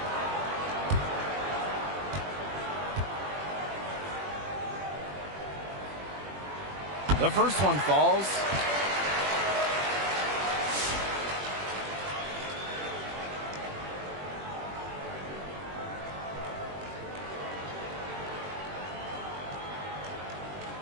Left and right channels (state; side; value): late; left; 21 ms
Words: The first one falls.